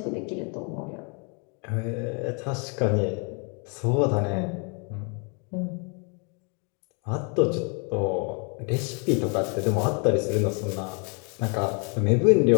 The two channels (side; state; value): right; quieter; 36.4 dB